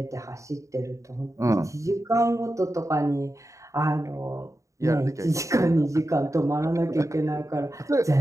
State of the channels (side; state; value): left; late; 0.15 ms